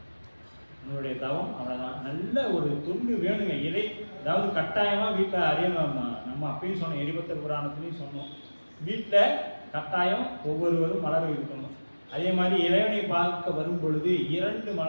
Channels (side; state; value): both; inverted; correlation -1.00